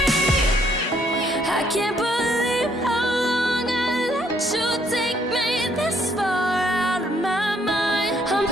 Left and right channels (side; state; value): both; normal; correlation 0.68